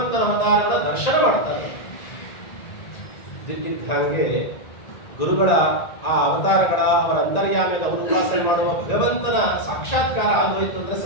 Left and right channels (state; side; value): late; right; 1.9 ms